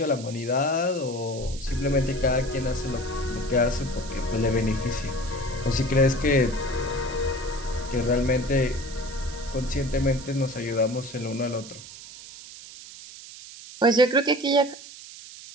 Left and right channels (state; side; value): noise; right; hiss, 15 dB below the sound